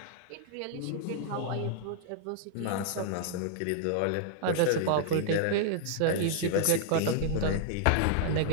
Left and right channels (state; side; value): different; both; correlation -0.01